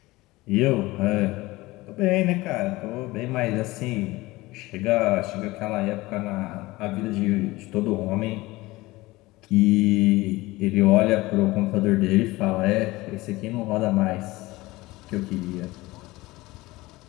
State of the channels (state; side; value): quieter; right; 20.1 dB